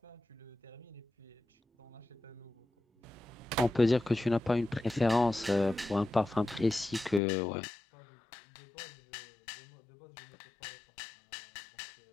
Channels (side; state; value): right; drops out; at 7.2 s